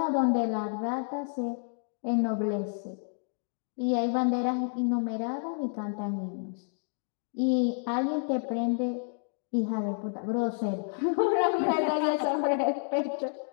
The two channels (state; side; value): silent; right; 58 dB below the other